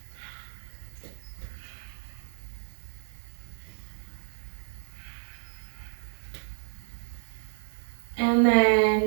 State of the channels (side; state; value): left; silent; digital silence